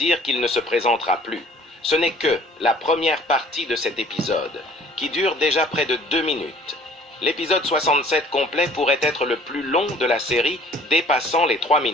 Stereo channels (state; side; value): normal; both; correlation 0.53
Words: qu'il ne se présentera plus. Ce n'est que la première partie de cet épisode, qui dure déjà près de 2 minutes. L'épisode 67 complet pourrait être le plus long de la série, dépassant les 3